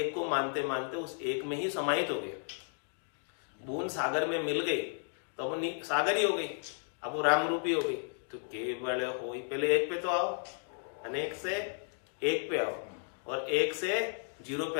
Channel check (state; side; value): silent; right; 55 dB below the other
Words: को मानते मानते उस एक में ही समाहित हो गया। बूंद सागर में मिल गई तो वो सागर ही हो गई, अब वो राम रूपी हो गई। तो केवल हो, पहले एक पे तो आओ, अनेक से एक पे आओ और एक से जीरो पे